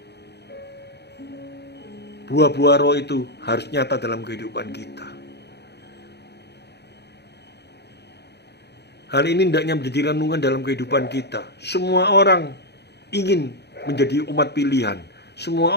buah-buah roh itu harus nyata dalam kehidupan kita. Hal ini hendaknya menjadi renungan dalam kehidupan kita. Semua orang ingin menjadi umat pilihan. Semua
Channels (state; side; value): late; right; 0.49 ms